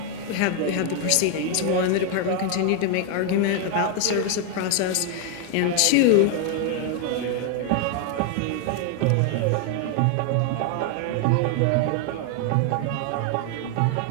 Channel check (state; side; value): different; both; correlation 0.00